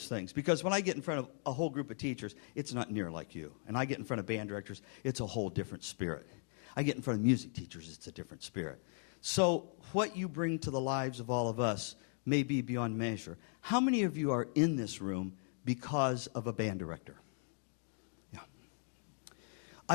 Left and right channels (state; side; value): silent; right; 52 dB below the other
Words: things. Because when I get in front of a whole group of teachers, it's not near like you. And I get in front of band directors, it's a whole different spirit. I get in front of music teachers, it's a different spirit. So what you bring to the lives of all of us may be beyond measure. How many of you are in this room because of a band director? Yeah.